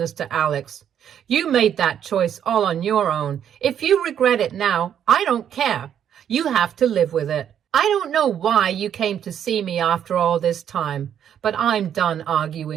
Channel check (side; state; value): left; quieter; 9.3 dB